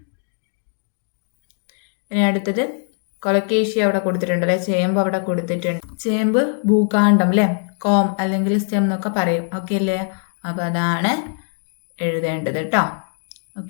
ഇനി അടുത്തത് കൊലക്കേഷ്യ അവിടെ കൊടുത്തിട്ടുണ്ട് അല്ലെ, ചേമ്പ് അവിടെ കൊടുത്തിട്ടുണ്ട്. ചേമ്പ് ഭൂകാണ്ഡം അല്ലെ, കോം അല്ലെങ്കിൽ സ്റ്റെം എന്നൊക്കെ പറയും. ഓക്കെ അല്ലേ? അപ്പോൾ അതാണ് എഴുതേണ്ടത് കേട്ടോ.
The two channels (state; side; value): silent; right; 57 dB below the other